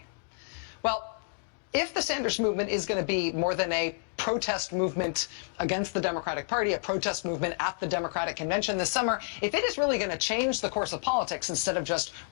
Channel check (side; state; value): right; silent; digital silence